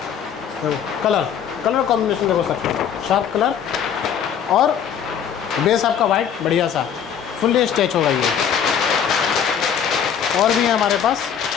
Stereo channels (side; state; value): right; quieter; 8.2 dB